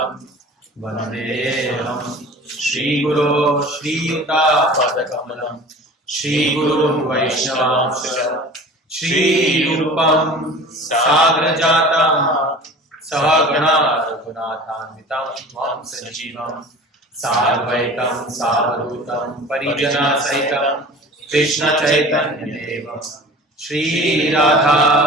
Vandeham Shri Guru Shri Yuta Padakamalam Shri Guru Vaishnavam Shri Rupam Sagrajatam Sahagana Raghunathanvitam Tvam Sanjeevam Sarvaitam Savadutam Parijana Sahitam Krishna Chaitanya Devam Shri Radha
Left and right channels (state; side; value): normal; both; correlation 0.41